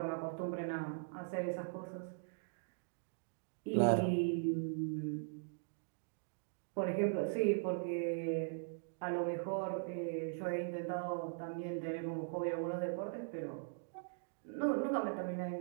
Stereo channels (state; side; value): silent; left; digital silence